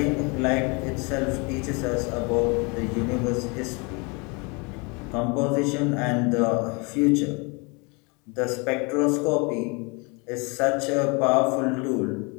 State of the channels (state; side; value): quieter; right; 30.5 dB